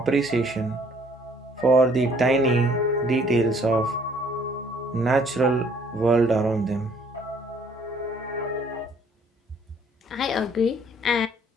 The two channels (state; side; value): normal; both; correlation 0.61